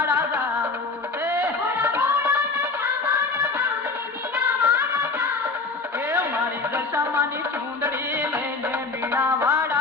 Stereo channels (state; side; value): quieter; right; 4.0 dB